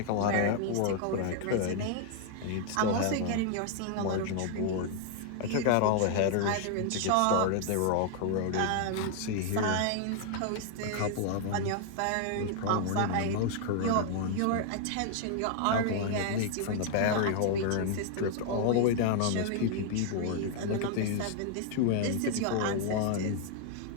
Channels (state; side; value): different; both; correlation 0.00